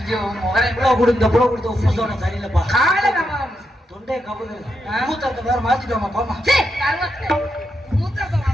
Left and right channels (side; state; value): both; normal; correlation 0.83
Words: கொடுத்த உப்பு சோடா சரியில்லப்பா. தொண்டை கபுது மூத்தத்தை வேற மாத்திட்டோமா போமா.